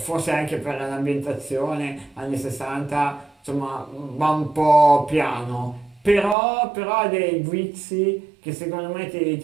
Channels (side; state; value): left; drops out; at 6.4 s